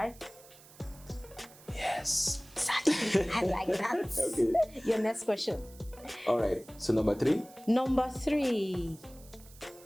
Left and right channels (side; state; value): right; noise; hiss, 22 dB below the sound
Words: Yes. Exactly. I like that. Okay. Your next question. All right, so number 3. Number 3.